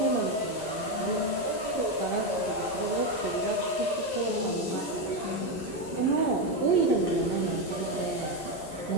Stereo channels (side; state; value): right; late; 11 ms